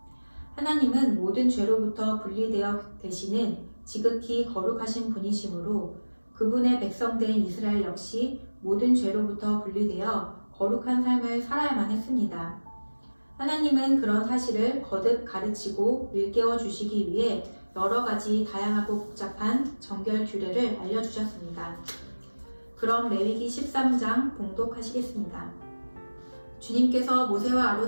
하나님은 모든 죄로부터 분리되어 계시는 지극히 거룩하신 분이시므로 그분의 백성된 이스라엘 역시 모든 죄로부터 분리되어 거룩한 삶을 살아야만 했습니다. 하나님은 그런 사실을 거듭 가르치고 일깨워 주시기 위해 여러 가지 다양하고 복잡한 정결 규례를 알려주셨습니다. 그럼 레위기 13장 봉독하시겠습니다. 주님께서 모세와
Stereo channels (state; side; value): inverted; both; correlation -1.00